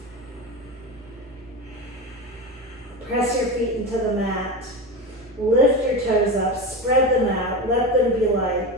Press your feet into the mat. Lift your toes up. Spread them out. Let them be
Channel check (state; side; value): normal; both; correlation 0.22